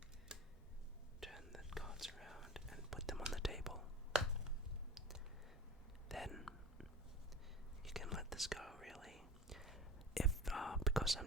Turn the cards around and put them on the table. Then you can let this go, really. If because I'm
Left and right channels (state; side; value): normal; both; correlation 0.33